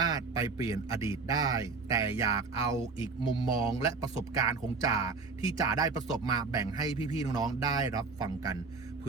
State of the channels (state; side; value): quieter; left; 4.4 dB